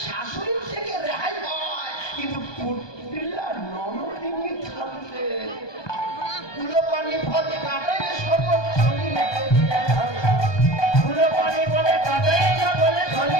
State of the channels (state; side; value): late; right; 1.2 ms